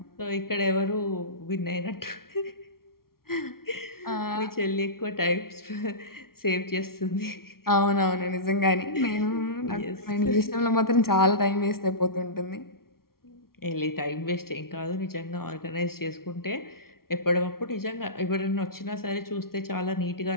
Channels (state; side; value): late; right; 0.93 ms